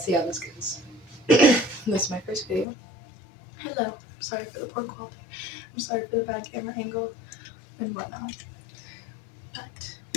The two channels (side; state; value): right; drops out; at 2.7 s